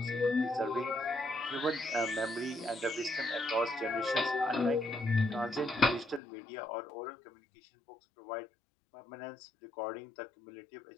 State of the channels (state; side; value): drops out; right; at 6.2 s